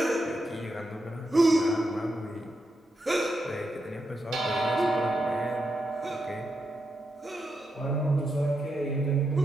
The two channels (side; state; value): both; normal; correlation 0.84